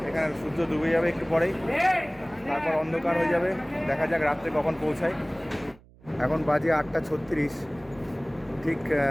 এখানে সূর্য ডুবে যাবে একটু পরেই, তারপর অন্ধকার হয়ে যাবে। দেখা যাক রাত্রে কখন পৌঁছায়। এখন বাজে 8:36, ঠিক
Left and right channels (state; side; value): noise; right; hum, 26 dB below the sound